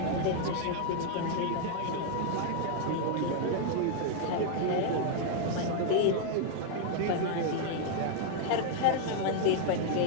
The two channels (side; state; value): both; different; correlation -0.01